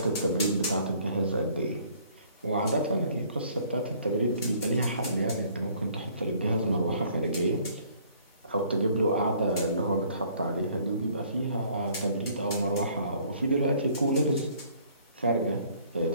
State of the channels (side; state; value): both; inverted; correlation -0.59